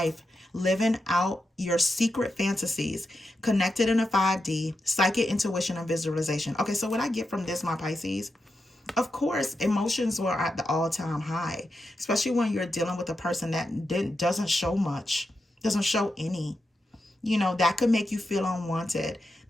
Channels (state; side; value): normal; both; correlation 0.88